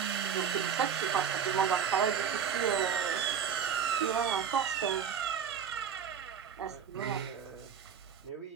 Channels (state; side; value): quieter; left; 7.8 dB